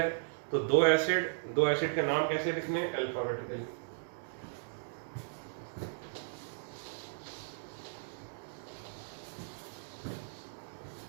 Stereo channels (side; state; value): left; silent; digital silence